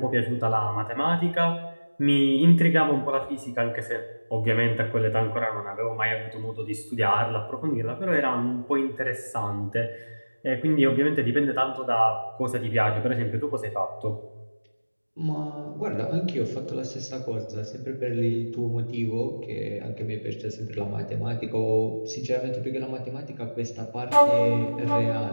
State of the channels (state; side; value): inverted; both; correlation -1.00